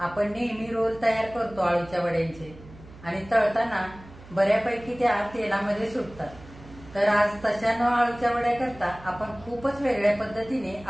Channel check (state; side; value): noise; right; hum, 19 dB below the sound